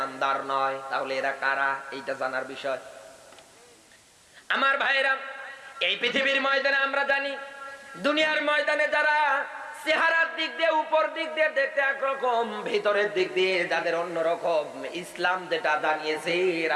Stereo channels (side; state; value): both; identical; correlation 1.00